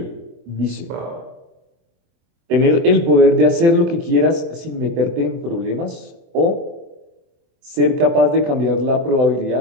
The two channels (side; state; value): left; late; 24 ms